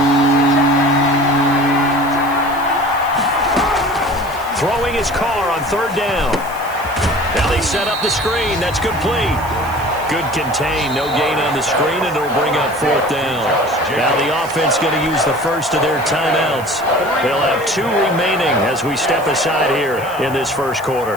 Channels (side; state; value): right; noise; hiss, 19 dB below the sound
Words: Throwing his car on third down. Now they set up the screen. That's complete. Good contain. No gain on the screen, and it'll bring up fourth down. Now the offense going to use the first of their timeouts. They'll have 2 remaining as we step aside here in this first